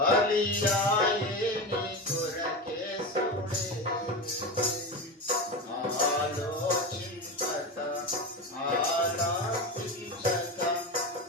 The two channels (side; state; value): both; normal; correlation 0.21